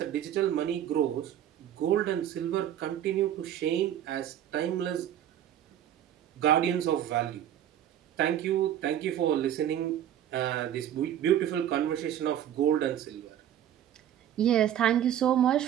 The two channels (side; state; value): left; quieter; 10.8 dB